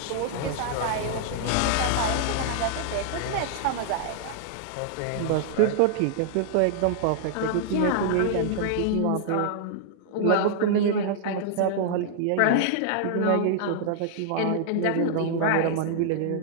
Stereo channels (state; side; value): different; both; correlation -0.01